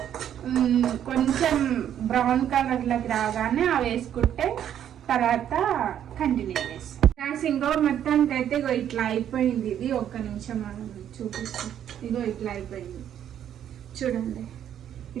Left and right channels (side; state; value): left; quieter; 10.1 dB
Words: కొంచెం బ్రౌన్ కలర్ లోకి రాగానే అవి వేసుకుంటే తర్వాత కంటిన్యూ చేస్తాం. ఇంకో మొత్తానికి అయితే ఇగో ఇట్లా అయిపోయింది. ఇది ఒక్క నిమిషం మనం చూపిస్తాం. ఇగో ఇట్లా అయిపోయింది చూడండి.